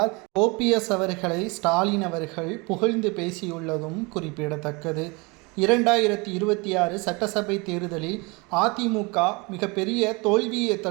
ஓபிஎஸ் அவர்களை ஸ்டாலின் அவர்கள் புகழ்ந்து பேசியுள்ளதும் குறிப்பிடத்தக்கது. 2026 சட்டசபை தேர்தலில் அதிமுக மிகப்பெரிய தோல்வியை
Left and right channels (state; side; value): quieter; left; 27.5 dB